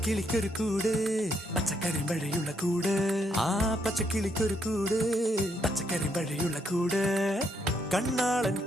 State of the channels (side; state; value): both; normal; correlation 0.75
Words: കൂട് പച്ചക്കരിമ്പഴയുള്ള കൂട് ആ പച്ചക്കിളിക്കൊരു കൂട് പച്ചക്കരിമ്പഴയുള്ള കൂട് കണ്ണാളൻ